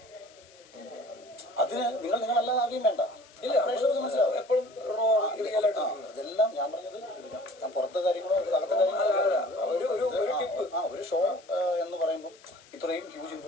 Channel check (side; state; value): left; noise; hiss, 26 dB below the sound